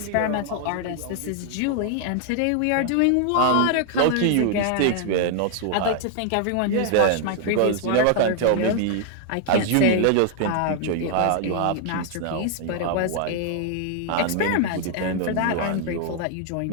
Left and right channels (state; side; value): different; both; correlation 0.00